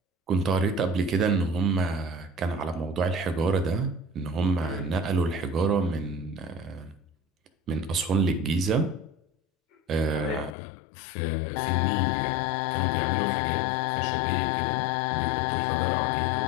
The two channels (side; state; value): right; drops out; at 10.6 s